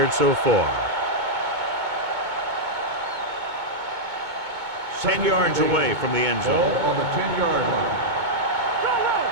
so far. 10 yards away from the end zone. Ball on the 10-yard line.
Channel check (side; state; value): left; late; 2.2 ms